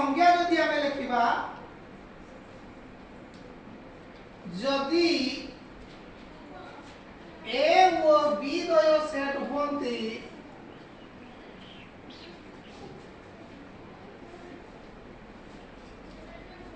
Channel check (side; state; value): both; identical; correlation 1.00